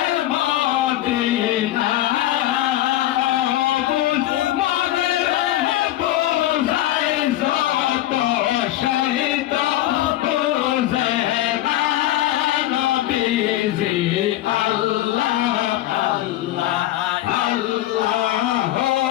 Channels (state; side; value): quieter; right; 14.5 dB